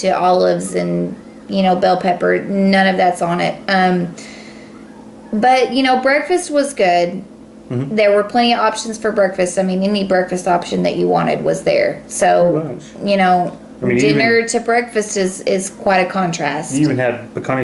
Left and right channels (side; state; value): both; identical; correlation 1.00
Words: olives and, bell pepper. None of that's on it. But, breakfast was good. Mm-hmm. There were plenty of options for breakfast. I mean, any breakfast option that you wanted was there. So, dinner to breakfast is quite a contrast. You even had